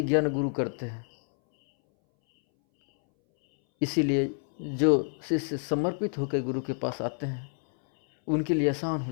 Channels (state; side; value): silent; right; 59 dB below the other